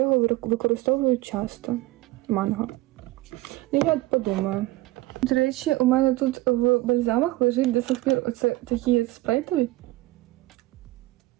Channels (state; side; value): quieter; left; 18.4 dB